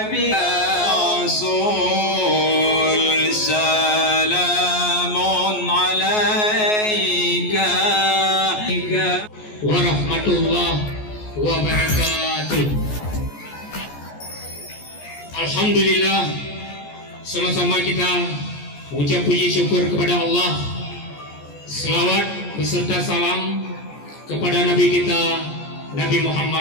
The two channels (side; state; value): right; late; 14 ms